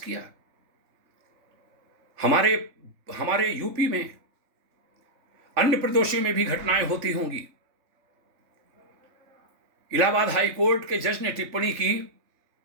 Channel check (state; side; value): late; left; 3.4 ms